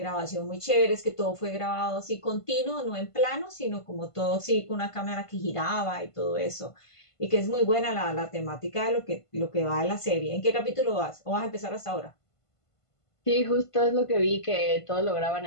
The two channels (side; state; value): right; late; 1.5 ms